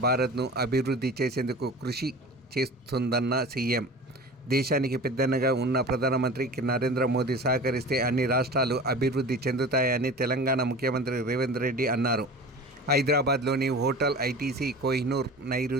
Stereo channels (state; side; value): normal; both; correlation 0.37